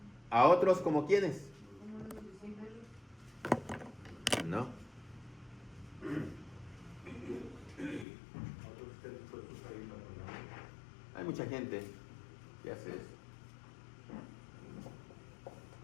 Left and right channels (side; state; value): right; drops out; at 8.1 s